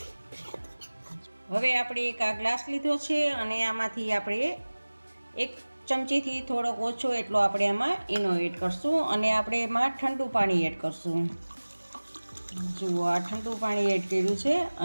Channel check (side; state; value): both; inverted; correlation -1.00